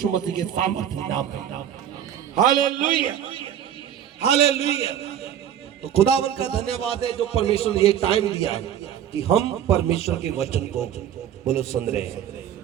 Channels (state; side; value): quieter; left; 10.1 dB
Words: मसीह के सामर्थ्य नाम में। हालेलुया। हालेलुया। तो खुदावन का धन्यवाद है जो परमेश्वर ने ये टाइम दिया है कि हम परमेश्वर के वचन को बोलो सुन रहे